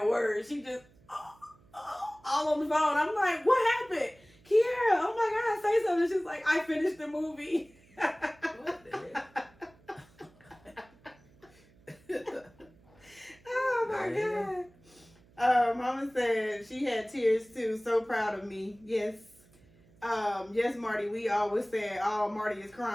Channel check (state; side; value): noise; right; hum, 28 dB below the sound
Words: word. She just all on the phone. I'm like, what happened? Kiara, oh my God, say something. She's like, I finished the movie. What the heck? Oh my God. she had tears too. So proud of me. Yes. Yes, Marty. We always say, "Oh, Marty is